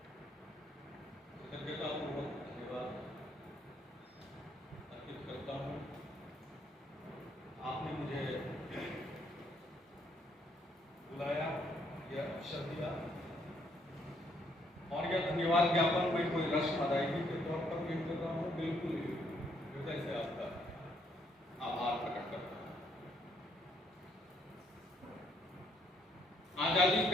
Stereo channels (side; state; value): both; normal; correlation 0.69